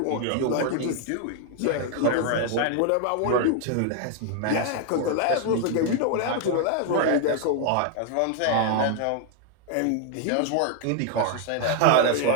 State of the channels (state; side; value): different; both; correlation 0.00